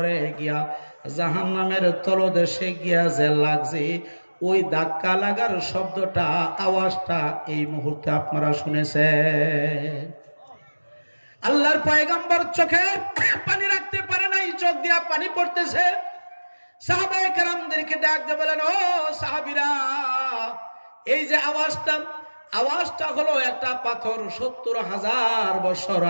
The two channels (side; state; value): both; inverted; correlation -1.00